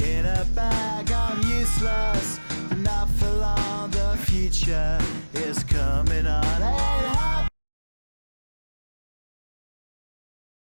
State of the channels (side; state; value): both; inverted; correlation -1.00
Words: a bag. I'm useless, but not for long. The future is coming on. Ain't happy.